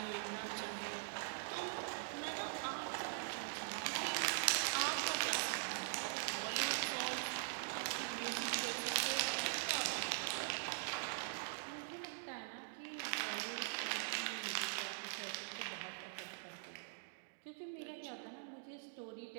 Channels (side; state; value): left; silent; digital silence